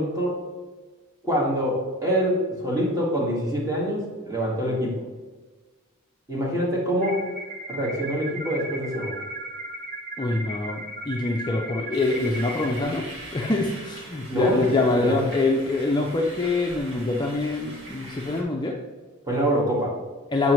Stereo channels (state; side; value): normal; both; correlation 0.47